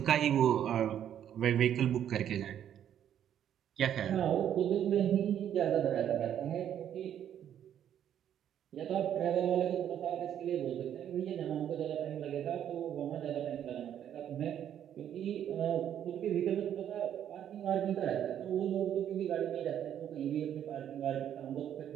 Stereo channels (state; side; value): quieter; left; 10.0 dB